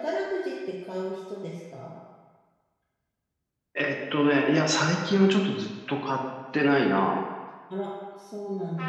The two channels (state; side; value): identical; both; correlation 1.00